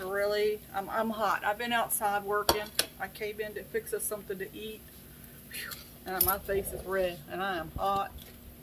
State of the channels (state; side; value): identical; both; correlation 1.00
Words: I'm hot. I've been outside working. I came in to fix us something to eat. And my face is red and I am hot.